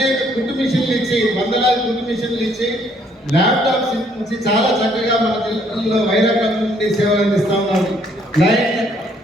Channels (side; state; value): both; normal; correlation 0.66